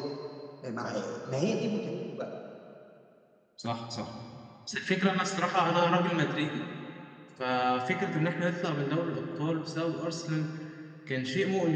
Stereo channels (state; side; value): identical; both; correlation 1.00